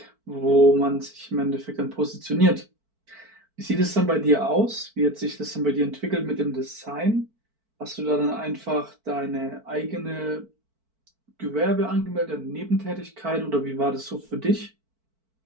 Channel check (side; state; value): left; late; 4.5 ms